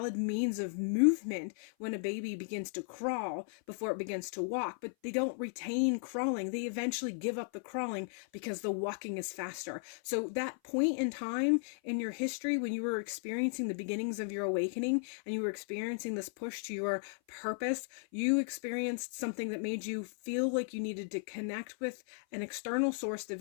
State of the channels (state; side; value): silent; right; 54 dB below the other